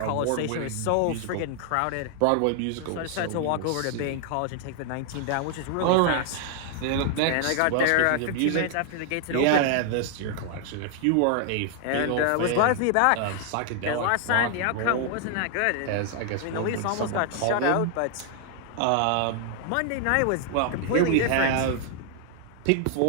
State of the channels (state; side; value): different; both; correlation 0.00